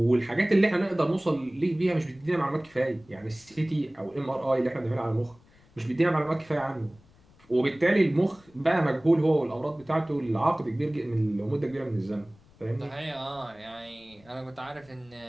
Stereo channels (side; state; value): left; noise; rumble, 28 dB below the sound